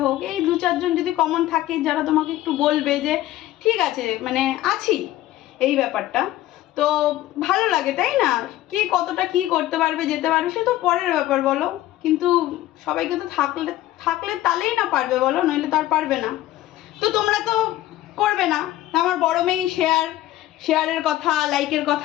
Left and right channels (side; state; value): right; quieter; 14.9 dB